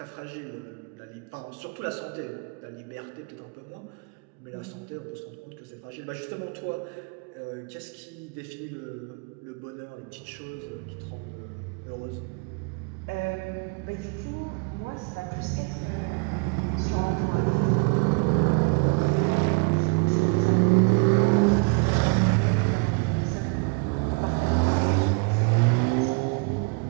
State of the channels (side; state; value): left; quieter; 34.3 dB